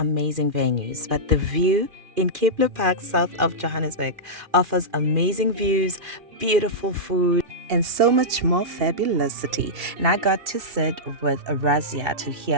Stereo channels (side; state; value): left; late; 2.8 ms